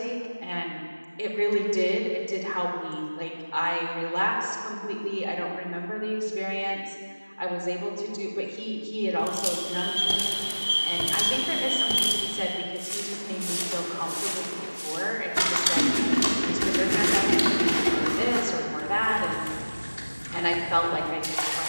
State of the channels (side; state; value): both; inverted; correlation -1.00